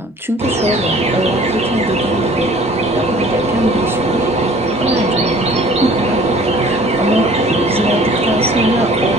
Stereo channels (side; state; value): both; normal; correlation 0.50